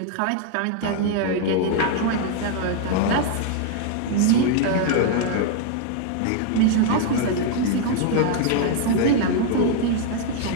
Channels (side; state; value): both; different; correlation 0.00